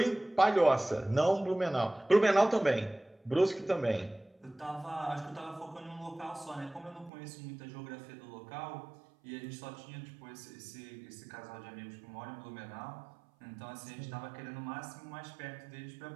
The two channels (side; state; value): left; drops out; at 7.1 s